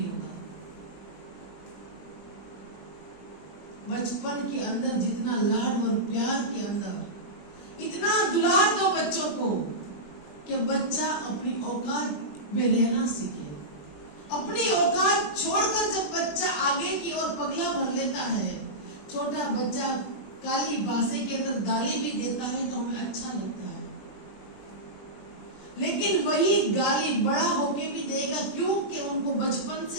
होगा। बचपन के अंदर जितना लाड और प्यार के अंदर इतना दुलार दो बच्चों को कि बच्चा अपनी औकात में रहना सीखे। अपनी औकात छोड़कर जब बच्चा आगे की ओर पगला भर लेता है, छोटा बच्चा काली भाषा के अंदर गाली भी देता है तो हमें अच्छा लगता है, लेकिन वही गाली बड़ा होके भी देगा, क्योंकि उनको बचपन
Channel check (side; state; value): right; late; 20 ms